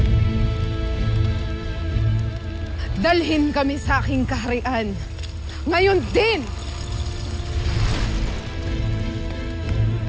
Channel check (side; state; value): both; identical; correlation 1.00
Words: Dalhin kami sa aking kaharian. Ngayon din!